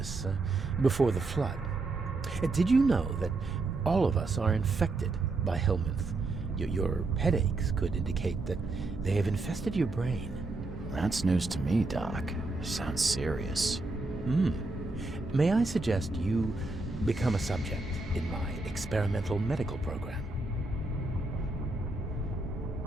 before the flood. Did you know that all of us are infected by helminth? Your headaches could indicate that they have infested your brain. That's news to me, Doc. Sounds serious. May I suggest you become a subject in my experimental medical program?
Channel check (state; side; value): quieter; left; 3.2 dB